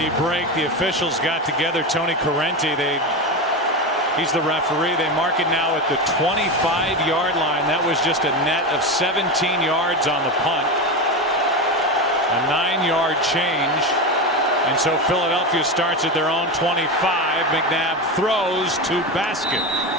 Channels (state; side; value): normal; both; correlation 0.19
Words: break, the officials got together. Tony Correnti, he's the referee. They mark it now at the 25-yard line. That was just a net of 17 yards on the punt. A 9-yard change. And so Philadelphia starts at their own 25. McNabb throws to Baskett.